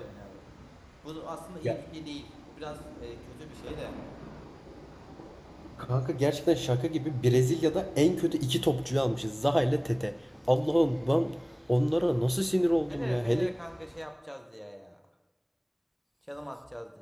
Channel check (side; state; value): both; identical; correlation 1.00